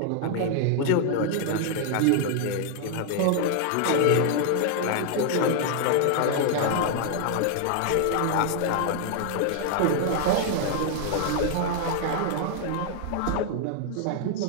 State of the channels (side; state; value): both; different; correlation 0.00